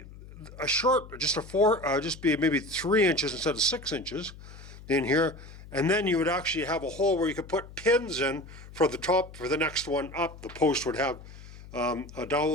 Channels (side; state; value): left; noise; hum, 17 dB below the sound